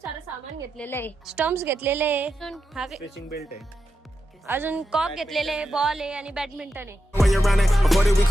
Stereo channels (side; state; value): both; normal; correlation 0.88